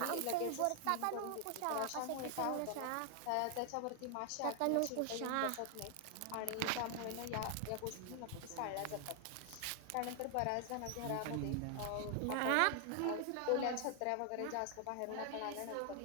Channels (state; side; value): different; both; correlation 0.00